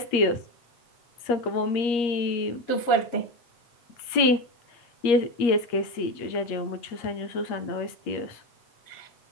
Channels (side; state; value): right; late; 8.5 ms